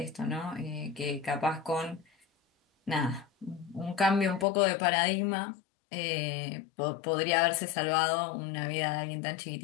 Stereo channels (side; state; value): right; drops out; at 4.5 s